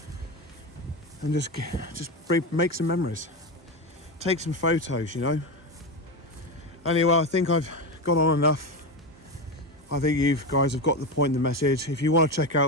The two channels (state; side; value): normal; both; correlation 0.17